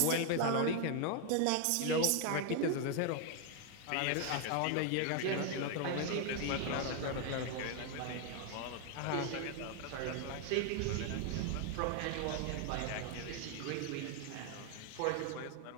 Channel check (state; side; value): different; both; correlation 0.01